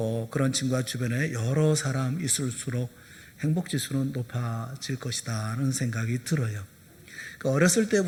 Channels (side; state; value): both; identical; correlation 1.00